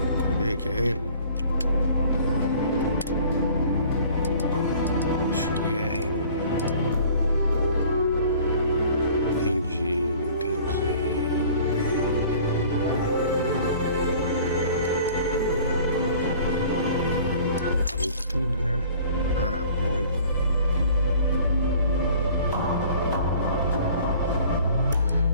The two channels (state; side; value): inverted; both; correlation -0.50